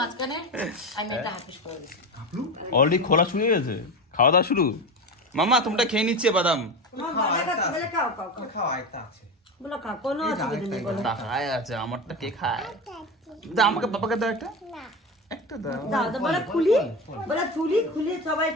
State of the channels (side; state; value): both; normal; correlation 0.23